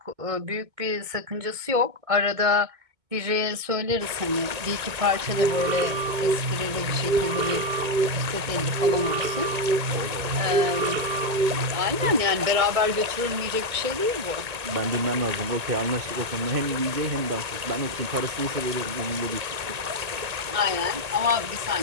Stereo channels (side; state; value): left; late; 2.2 ms